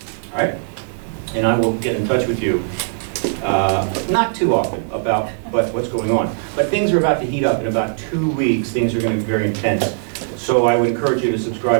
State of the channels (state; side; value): silent; left; 57 dB below the other